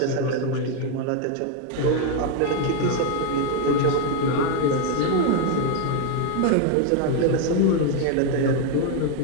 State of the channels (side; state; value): both; different; correlation 0.01